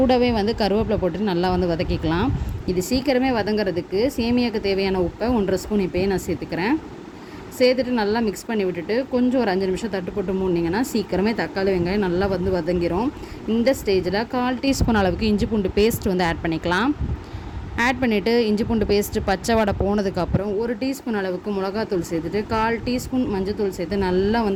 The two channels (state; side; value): identical; both; correlation 1.00